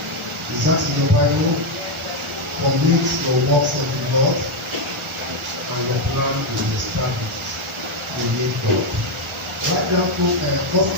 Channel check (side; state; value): both; normal; correlation 0.04